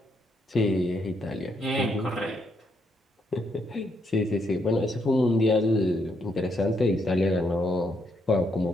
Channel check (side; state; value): both; normal; correlation 0.76